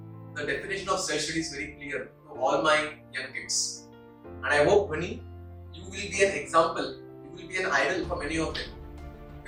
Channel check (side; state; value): both; identical; correlation 1.00